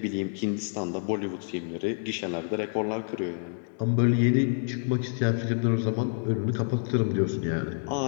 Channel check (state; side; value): silent; right; digital silence